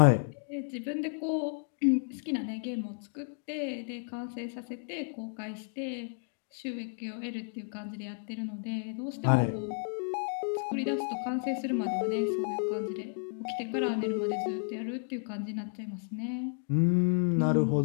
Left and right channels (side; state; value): right; silent; 56 dB below the other